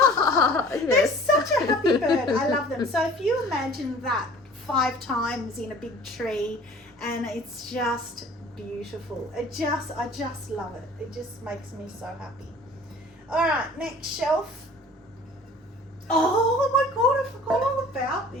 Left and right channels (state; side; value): normal; both; correlation 0.47